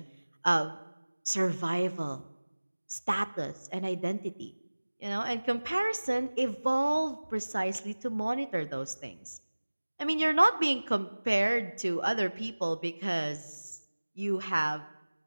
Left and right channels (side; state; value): both; inverted; correlation -1.00